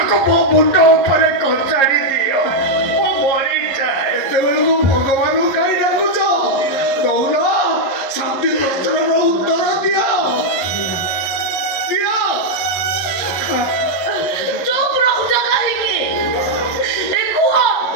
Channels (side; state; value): right; late; 11 ms